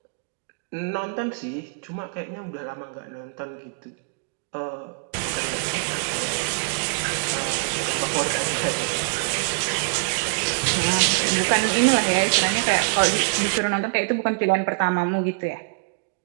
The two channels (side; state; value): left; quieter; 37.7 dB